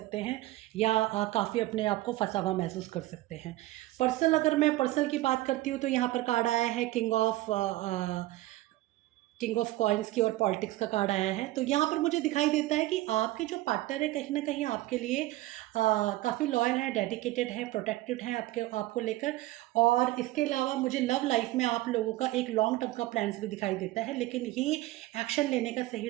हैं या काफ़ी अपने आप को फँसा हुआ महसूस कर सकते हैं। पर्सनल, अगर मैं पर्सनल की बात करती हूँ तो यहाँ पर कार्ड आया है किंग ऑफ कॉइन्स की और पॉलिटिक्स का कार्ड आया है। तो यहाँ पर मुझे दिखाई देता है कि आपके जो पार्टनर है कहीं न कहीं आपके लिए काफ़ी लॉयल है, डेडिकेटेड है, प्रोटेक्टेड है आपको लेकर। और इसके अलावा मुझे लव लाइफ़ में आप लोगों का एक लॉन्ग टर्म का प्लान्स भी दिखाई देता है, लेकिन ये एक्शन लेने का सही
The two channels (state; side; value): quieter; left; 17.5 dB